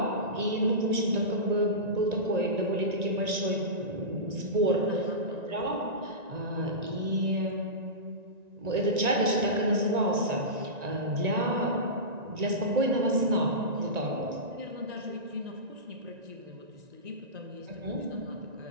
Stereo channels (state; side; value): late; left; 1.9 ms